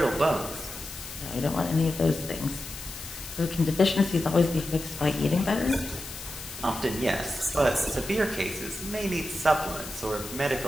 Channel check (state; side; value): noise; left; hiss, 11 dB below the sound